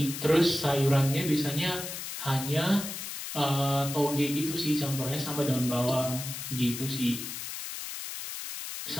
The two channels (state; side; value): noise; left; hiss, 7 dB below the sound